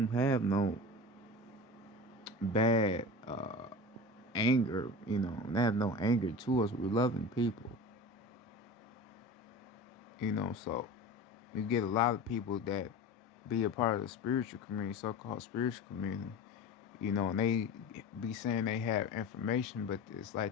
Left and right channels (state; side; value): normal; both; correlation 0.32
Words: have no bad anger. They have no anger to us. We're loving people. So you get a lot of people that be a part of the spiritual community, so-called spiritual community, and they be saying they have information, but it's